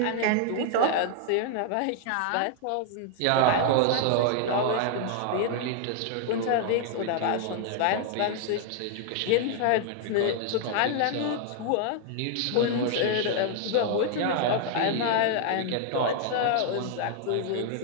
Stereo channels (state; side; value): different; both; correlation 0.00